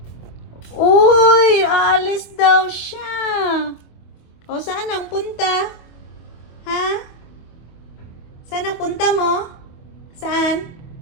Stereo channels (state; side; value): late; right; 25 ms